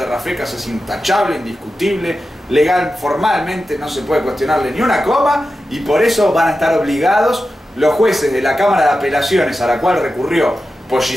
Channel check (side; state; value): both; normal; correlation 0.92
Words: Rafecas es intachable, indiscutible, legal, formalmente no se puede cuestionarle ni una coma y por eso van a estar obligados los jueces de la Cámara de Apelaciones a la cual recurrió